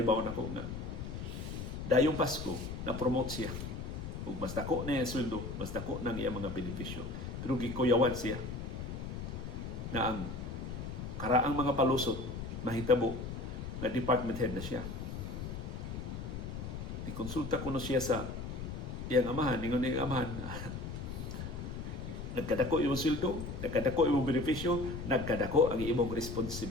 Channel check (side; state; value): left; noise; rumble, 6 dB below the sound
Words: nako nga dayong Pasko na promote siya. Ug mas dako na yung sweldo, mas dako nang iyang mga benepisyo. Pero gikuyawan siya na ang karaang mga palusot mahitabo na department head na siya. Ikonsulta ko na siya sa iyang amahan, ingon niyang amahan, nagkadako imong sweldo, nagkadako imong benepisyo, nagkadako ang imong